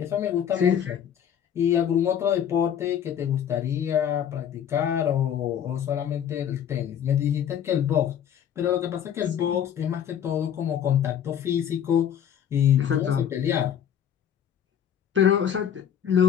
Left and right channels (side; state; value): right; quieter; 9.2 dB